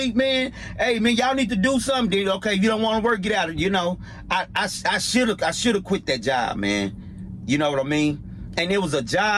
man. Hey man, y'all need to do something. Okay, if you don't want to work, get out of it. You know, I should have quit that job, man. You know what I mean? And it was a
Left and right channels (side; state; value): both; identical; correlation 1.00